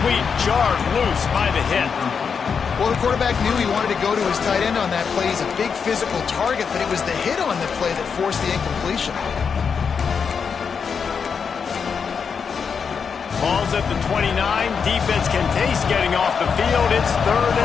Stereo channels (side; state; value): right; quieter; 6.2 dB